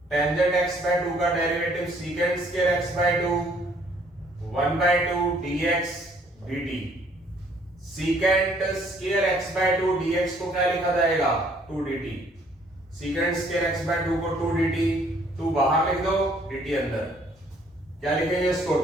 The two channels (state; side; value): normal; both; correlation 0.62